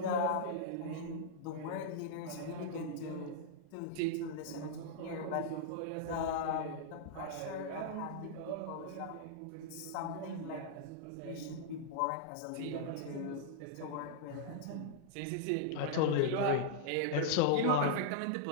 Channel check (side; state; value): both; different; correlation -0.02